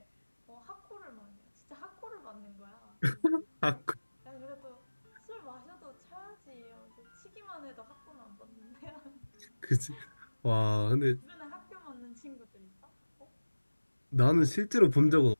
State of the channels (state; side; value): inverted; both; correlation -1.00